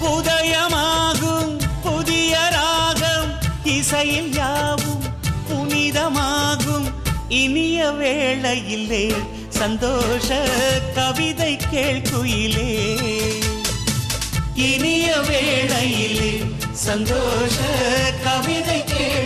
உதயமாகும் புதிய ராகம் இசையில் யாவும் புனிதமாகும். இனிய வேளையிலே சந்தோஷ கவிதை கேள்குயிலே. இனிய வேளையிலே சந்தோஷ கவிதை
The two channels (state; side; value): identical; both; correlation 1.00